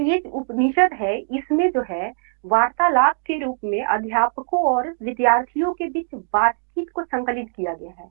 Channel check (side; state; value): left; silent; digital silence